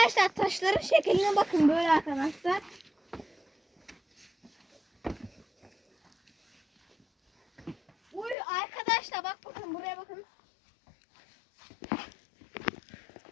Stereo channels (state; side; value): drops out; right; at 8.3 s